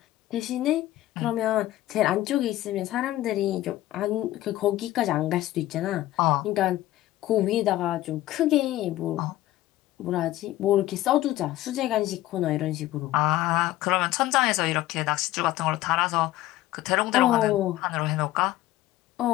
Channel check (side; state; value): right; quieter; 15.4 dB